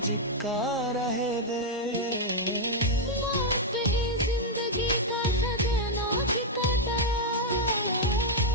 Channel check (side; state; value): both; normal; correlation -0.02